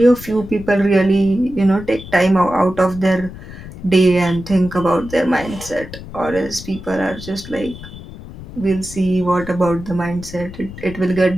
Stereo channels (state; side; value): noise; left; rumble, 14 dB below the sound